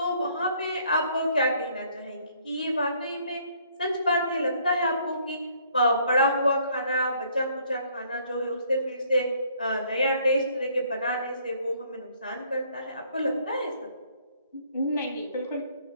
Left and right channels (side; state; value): both; inverted; correlation -0.64